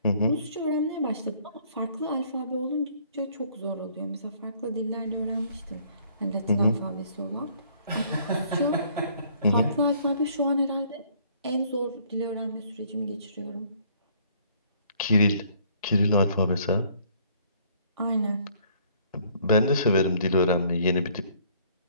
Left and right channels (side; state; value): both; inverted; correlation -0.61